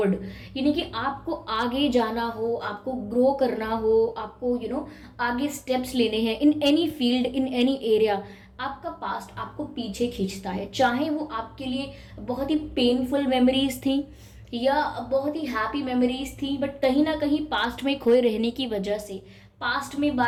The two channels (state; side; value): identical; both; correlation 1.00